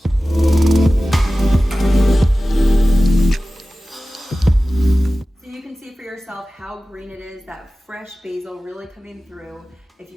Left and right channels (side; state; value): both; normal; correlation 0.96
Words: So you can see for yourself how green it is, that fresh basil really coming through. If